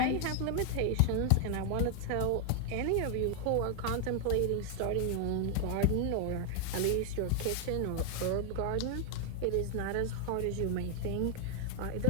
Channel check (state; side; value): different; both; correlation 0.00